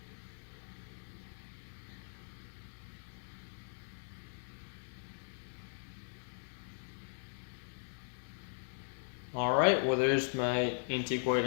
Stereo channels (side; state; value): right; silent; digital silence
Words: Alright, well there's my antique white